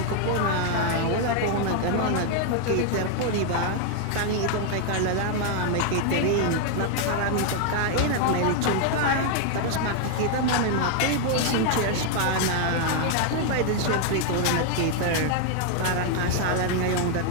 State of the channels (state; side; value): different; both; correlation 0.00